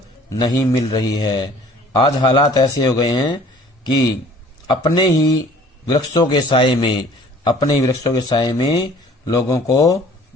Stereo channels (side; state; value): both; normal; correlation 0.52